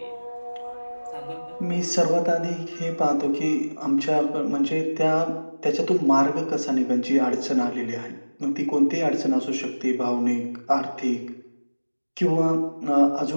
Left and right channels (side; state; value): both; inverted; correlation -1.00